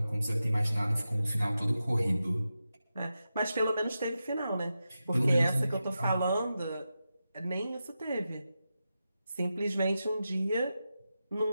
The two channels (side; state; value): both; inverted; correlation -0.90